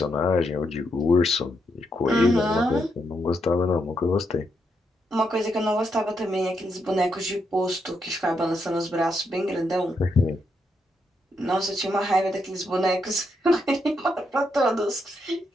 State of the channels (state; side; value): normal; both; correlation 0.80